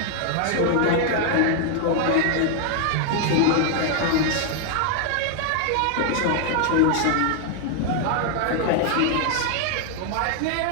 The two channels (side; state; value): both; different; correlation 0.00